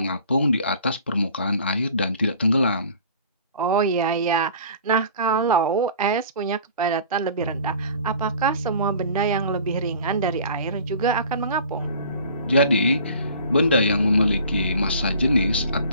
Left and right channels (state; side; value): inverted; both; correlation -0.47